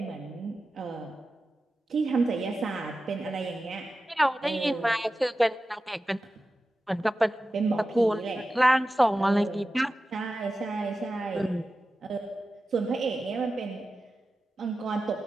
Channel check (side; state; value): both; normal; correlation 0.93